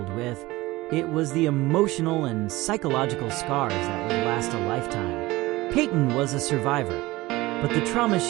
with. it was the emotional and psychological scars that would last a lifetime. Payton was a survivor, but the trauma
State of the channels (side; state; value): left; quieter; 19.7 dB